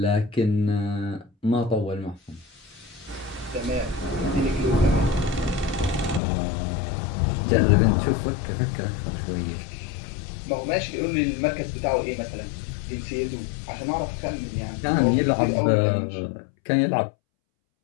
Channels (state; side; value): drops out; right; at 6.2 s